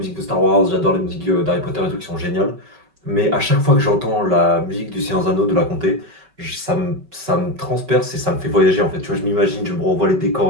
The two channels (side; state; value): left; late; 5.3 ms